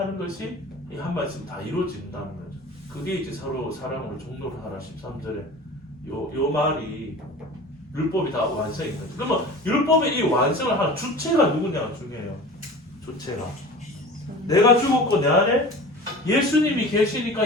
것이 이 한 말씀 다 이루어진다는 거죠. 그게 이제 서로 사랑으로 종로를 하라 13절에 요 말이 율법이 다 완성인 거죠. 그러면 율법의 이 완성을 하는 주체가 누구냐가 중요해요. 주체가 내가 죽었고 내 안에 예수님이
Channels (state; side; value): normal; both; correlation 0.37